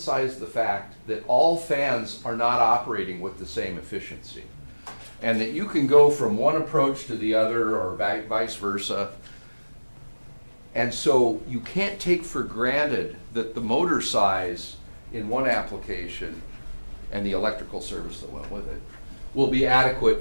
the fact that all fans are not operating with the same efficiency, and that you can go from one approach to the other or vice versa. And so you can't take for granted that the motor size in one application and the electrical service that went with it will be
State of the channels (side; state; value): both; inverted; correlation -1.00